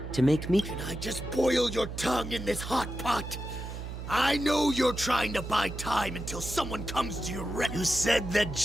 to make meat. Can I just boil your tongue in this hot pot? I know you're trying to buy time until someone comes to your rescue. You said that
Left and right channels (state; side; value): noise; right; hum, 8 dB below the sound